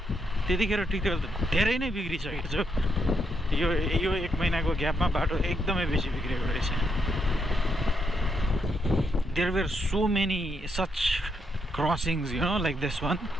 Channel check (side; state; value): both; normal; correlation 0.79